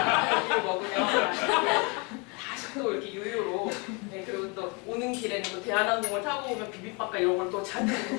먹으면 다시 또 이렇게 유유로 네, 그리고 또 오는 길에는 또 대한항공을 타고 오면 비빔밥과 이런 걸 또 잔뜩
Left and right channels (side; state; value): right; quieter; 30.7 dB